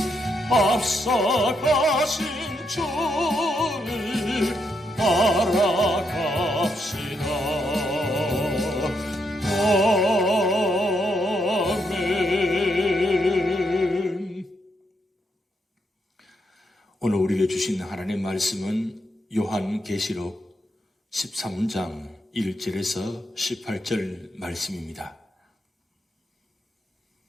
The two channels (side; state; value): both; normal; correlation 0.79